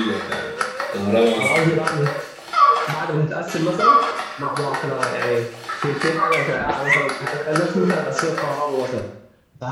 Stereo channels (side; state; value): both; identical; correlation 1.00